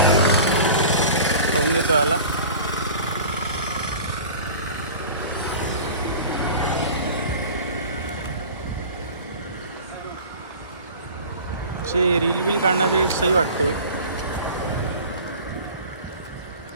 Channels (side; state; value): both; inverted; correlation -0.40